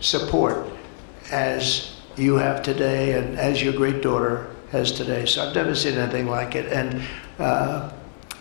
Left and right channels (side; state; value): right; silent; 63 dB below the other